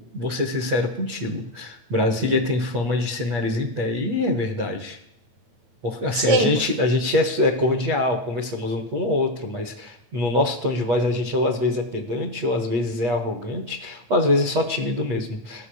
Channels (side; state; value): left; late; 8.5 ms